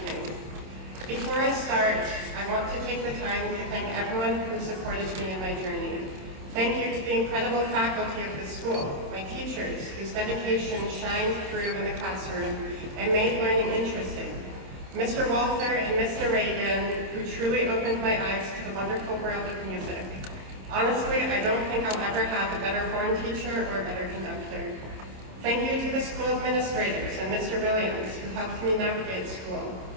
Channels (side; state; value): left; late; 27 ms